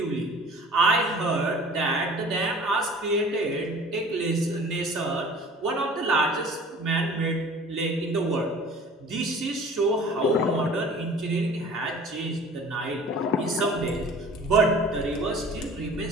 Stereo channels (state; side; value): normal; both; correlation 0.45